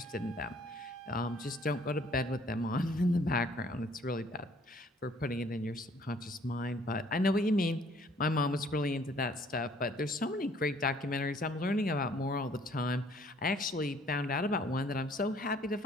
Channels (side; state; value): both; normal; correlation 0.59